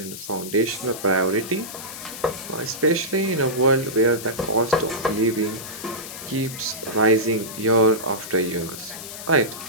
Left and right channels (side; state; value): left; noise; hiss, 11 dB below the sound